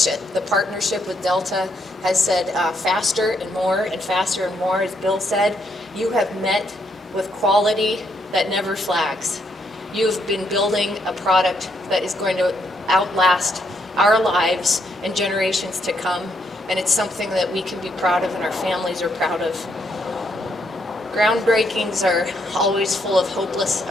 the partnership with Delta has said faster and more, as Bill said, you have met with quality that never flags. You've been building a product that is going to outlast our lives and generations to come, and it's something that we can be proud of and our families are proud of. Groundbreakings are always full of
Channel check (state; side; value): normal; both; correlation 0.75